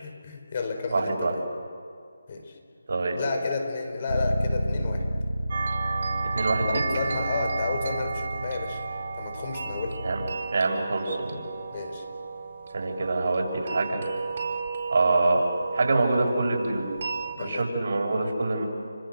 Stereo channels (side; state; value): both; inverted; correlation -0.89